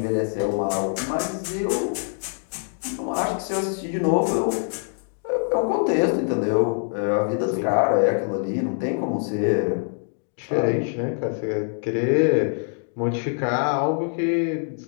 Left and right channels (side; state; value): right; silent; 62 dB below the other